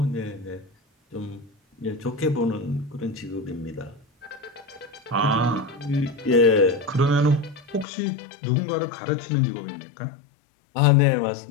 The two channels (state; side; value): drops out; right; at 7.9 s